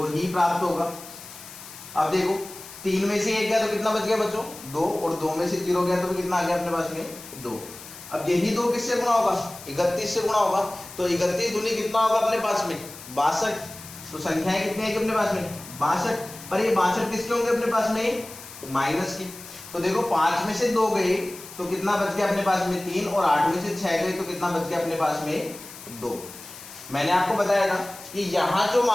ही प्राप्त होगा। अब देखो 3 में से 1 गया तो कितना बच गया बच्चों? 2। और 2 में से 0 गया तो कितना आ गया अपने पास में? 2। अब यही 2 किससे गुणा होगा? 31 से गुणा होगा। तो 31 दूनी कितना होगा अपने पास में? 62। तो संख्याएं कितनी आएगी अपने पास में 62, पर ये 62 किसके होंगे अपने पास में माइनस के। तो देखो 5 में से 2 गए तो कितना बच गया अपने पास में 3, और 8 में से 6 गए तो कितना बच गया अपने पास में 2। मैंने आपको बताया था कि यहाँ जो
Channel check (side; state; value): left; noise; hiss, 15 dB below the sound